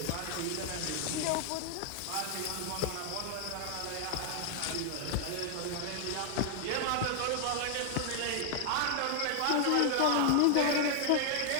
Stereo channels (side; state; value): both; different; correlation 0.00